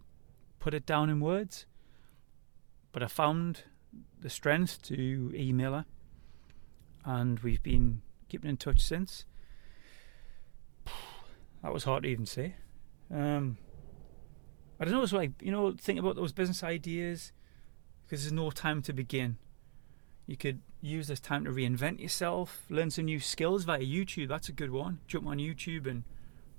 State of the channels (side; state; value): left; silent; 52 dB below the other